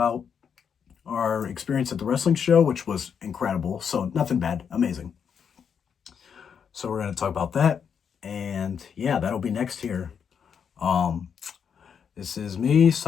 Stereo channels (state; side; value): quieter; right; 7.2 dB